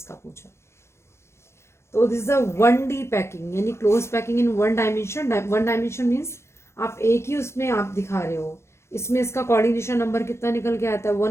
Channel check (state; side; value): late; right; 0.13 ms